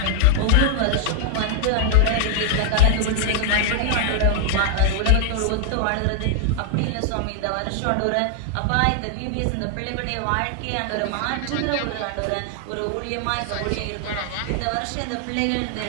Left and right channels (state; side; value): different; both; correlation 0.00